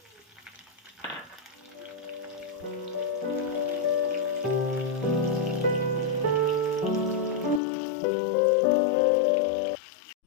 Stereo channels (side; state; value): right; drops out; at 7.6 s